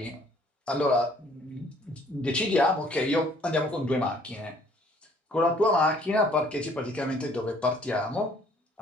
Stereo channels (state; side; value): normal; both; correlation 0.59